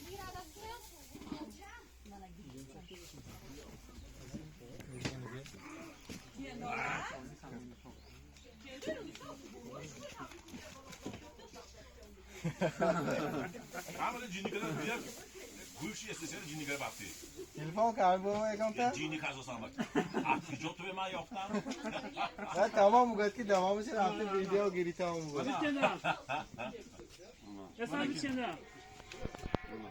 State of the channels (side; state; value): both; identical; correlation 1.00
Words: Ama cini kadar büyük. Gülşi istesene cini kadar baktı. تلفن کار بابا اگم Cini kazı sanmak. Artık jotu ve ma yoktan. نه تمام میگه که تمامش رفته ویدیو گیری تمام میگه Kendiler. Efendim kendiler.